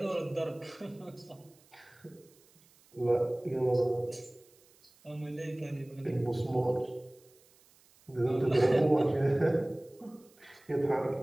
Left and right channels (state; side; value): noise; right; hiss, 29 dB below the sound